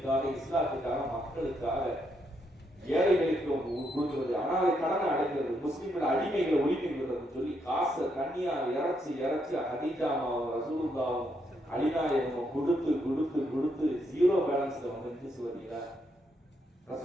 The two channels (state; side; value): normal; both; correlation 0.77